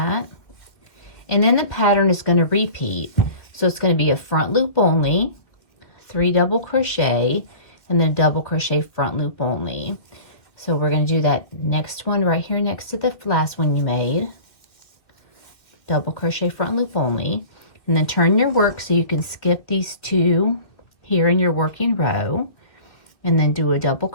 And then the pattern is going to repeat. So it's going to be a front loop only, 3 double crochet, and then double crochet front loop only. So we're going to do that next one right here next to the last one you made. Double crochet front loop only, and then turn your work so you can skip these 2 here in your working row, and then do a double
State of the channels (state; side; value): late; right; 2.2 ms